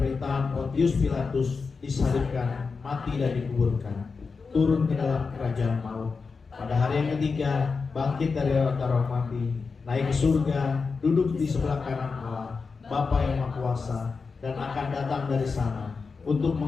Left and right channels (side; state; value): right; quieter; 4.8 dB